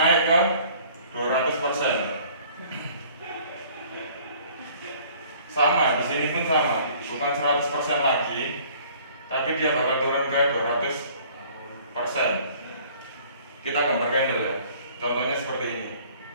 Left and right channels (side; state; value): both; inverted; correlation -0.54